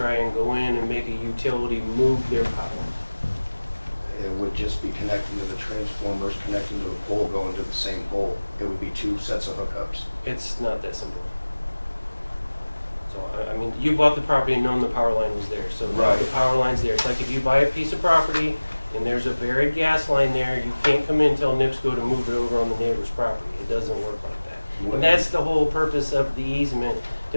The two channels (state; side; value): inverted; both; correlation -1.00